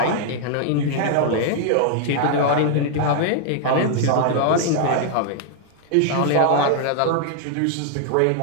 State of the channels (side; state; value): both; different; correlation 0.00